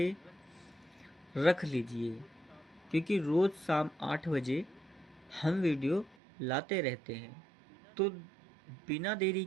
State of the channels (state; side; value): drops out; left; at 6.2 s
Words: रख लीजिए, क्योंकि रोज़ शाम 8 बजे हम वीडियो लाते रहते हैं। तो बिना देरी